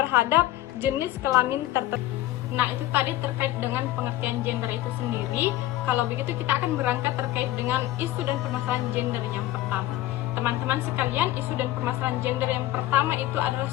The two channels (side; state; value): right; quieter; 15.0 dB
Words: jenis kelamin tertentu. Nah, itu tadi terkait dengan pengertian gender itu sendiri. Kalau begitu kita akan berangkat terkait dengan isu dan permasalahan gender yang pertama. Teman-teman sekalian, isu dan permasalahan gender yang pertama itu adalah